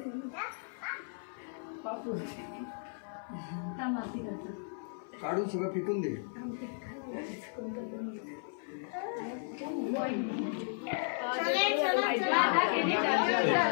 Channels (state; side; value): silent; right; 55 dB below the other